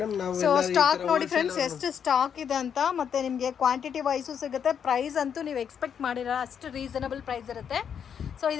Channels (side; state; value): right; quieter; 7.9 dB